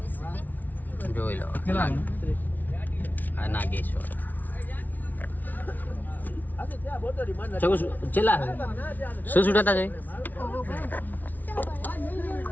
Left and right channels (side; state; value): right; late; 0.081 ms